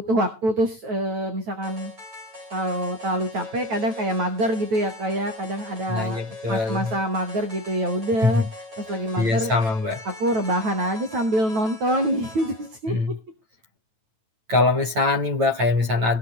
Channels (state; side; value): late; left; 9.0 ms